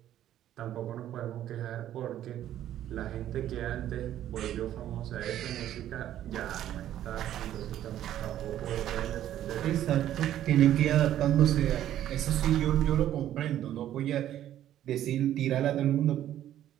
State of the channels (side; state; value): left; quieter; 11.9 dB